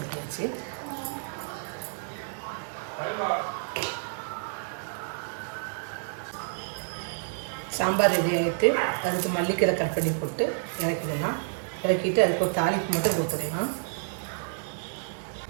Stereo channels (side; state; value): left; silent; digital silence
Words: சாம்பார் ரெடி ஆகிட்டு அதுக்கு மல்லிக்கீரை கட் பண்ணி போட்டு இறக்கிடலாம். இறக்கிட்டு அதுக்கு ஒரு தாளிப்பு மட்டும் கொடுத்துடலாம்.